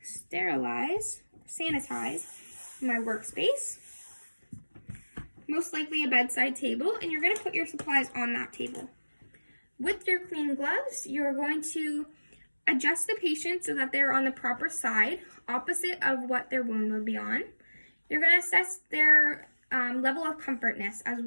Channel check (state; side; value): inverted; both; correlation -1.00